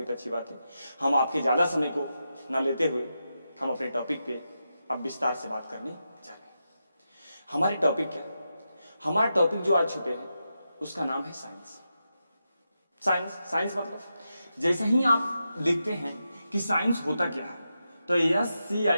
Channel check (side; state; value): both; inverted; correlation -0.88